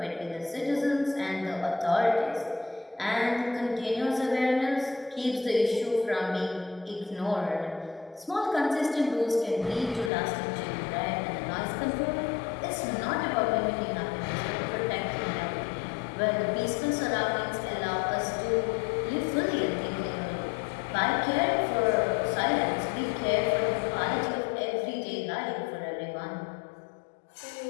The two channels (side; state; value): right; drops out; at 10.1 s